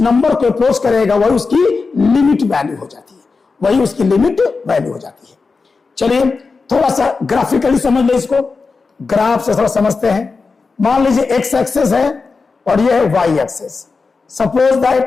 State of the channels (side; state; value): right; quieter; 4.4 dB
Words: को अप्रोच करेगा वही उसकी लिमिट वैल्यू हो जाती है, वही उसकी लिमिट वैल्यू हो जाती है। चलिए थोड़ा सा ग्राफिकली समझ ले इसको, ग्राफ से थोड़ा समझते हैं। मान लीजिए x एक्सेस है और ये है y एक्सेस। सपोज